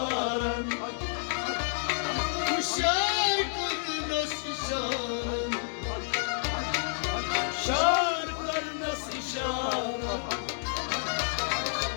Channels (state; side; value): silent; right; digital silence